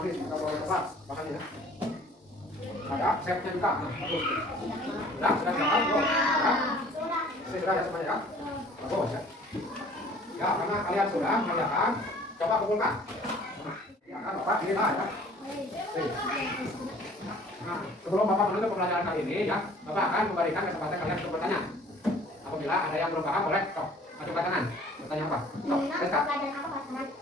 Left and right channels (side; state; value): both; normal; correlation 0.52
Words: kita boleh tepat bahasanya ya. Ada setnya juga. Nah, bagus. Sudah gambar belum? Ya. Ini sudah ya semuanya ya. Bagus ya. Ya, karena kalian sudah mengerjakan, coba kumpulkan. Ya kan Bapak ini lah ya. Nah, sebelum Bapak menutup pembelajaran kali ini ya, Bapak akan memberikan kesempatan kalian untuk bertanya. Apabila ada yang belum paham boleh sok ajukan tangan. Bertanya apa? Sok,